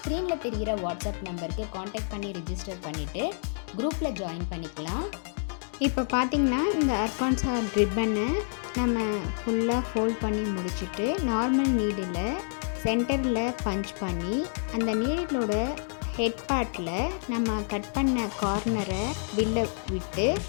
தெரிகிற வாட்ஸ்அப் நம்பருக்கு காண்டாக்ட் பண்ணி ரிஜிஸ்டர் பண்ணிவிட்டு குரூப்பில் ஜாயின் பண்ணிக்கலாம். இப்போ பார்த்திங்கன்னா இந்த ஆர்கான்சா ரிப்பனை நம்ம ஃபுல்லாக ஃபோல்ட் பண்ணி முடிச்சுட்டு நார்மல் நீடில் சென்டரில் பஞ்ச் பண்ணி அந்த நீடிலோட ஹெட் பார்ட்டில் நம்ம கட் பண்ண கார்னரை வில்ல விட்டு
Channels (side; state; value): right; silent; digital silence